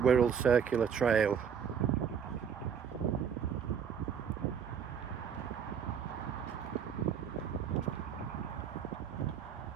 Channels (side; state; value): left; quieter; 7.5 dB